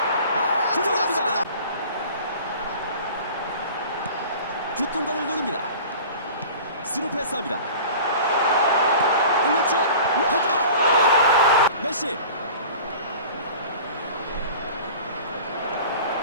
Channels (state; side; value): inverted; both; correlation -0.41